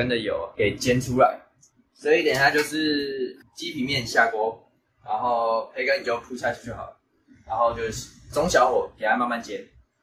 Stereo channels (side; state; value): both; identical; correlation 1.00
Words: 的油给煎出来。所以等一下就是鸡皮面下锅，然后培根你就铺下去就好了，然后就是中小火给它慢慢煎，